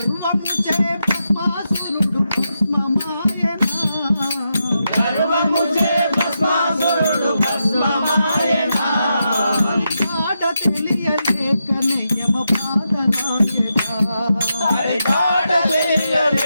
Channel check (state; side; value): inverted; both; correlation -0.85